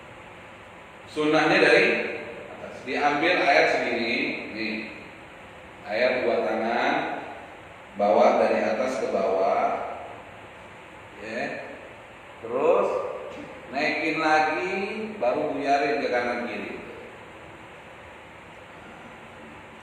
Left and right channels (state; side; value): identical; both; correlation 1.00